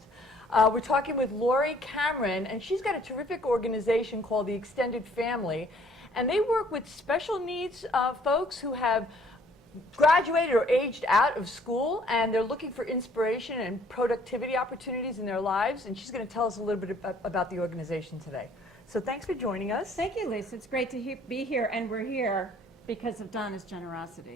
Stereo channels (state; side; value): normal; both; correlation 0.59